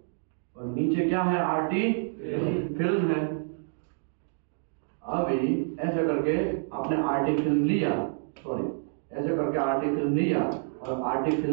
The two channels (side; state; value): left; silent; digital silence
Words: और नीचे क्या है? RT फिल्म है। अभी ऐसे करके आपने RT फिल्म लिया, सॉरी ऐसे करके RT फिल्म लिया और RT